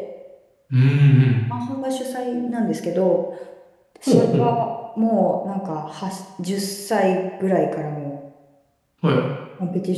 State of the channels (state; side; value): identical; both; correlation 1.00